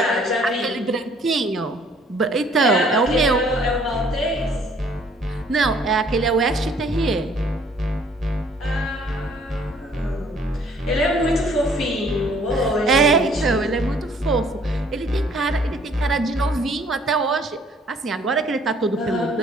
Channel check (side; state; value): both; normal; correlation 0.59